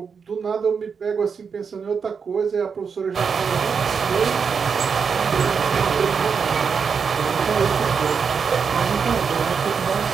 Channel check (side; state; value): left; quieter; 6.0 dB